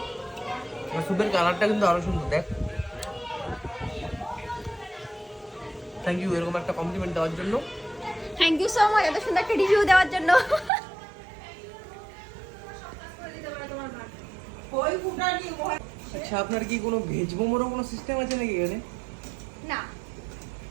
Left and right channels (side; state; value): left; drops out; at 10.7 s